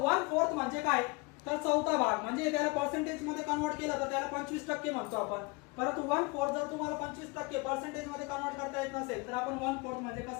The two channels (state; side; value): quieter; right; 27.3 dB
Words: 1/4 म्हणजे काय, तर चौथा भाग. म्हणजे त्याला पर्सेंटेज मध्ये कन्वर्ट केलं तर त्याला 25% म्हणतो आपण. परंतु 1/4 जर तुम्हाला 25% पर्सेंटेज मध्ये कन्वर्ट करता येत नसेल तर आपण 1/4 म्हणजे